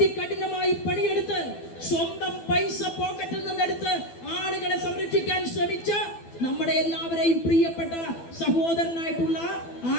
പണിയെടുത്ത് സ്വന്തം പൈസ പോക്കറ്റിൽ നിന്നെടുത്ത് ആളുകളെ സംരക്ഷിക്കാൻ ശ്രമിച്ച നമ്മുടെ എല്ലാവരെയും പ്രിയപ്പെട്ട സഹോദരനായിട്ടുള്ള ആ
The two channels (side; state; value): right; late; 12 ms